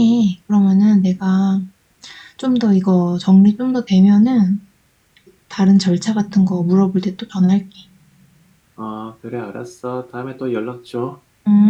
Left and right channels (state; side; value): identical; both; correlation 1.00